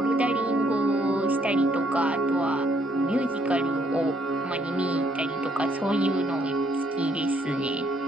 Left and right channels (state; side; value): normal; both; correlation 0.69